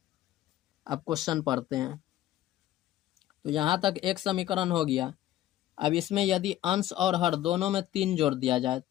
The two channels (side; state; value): right; quieter; 13.6 dB